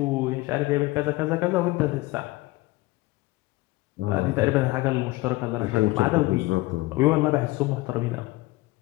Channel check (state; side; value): quieter; right; 20.5 dB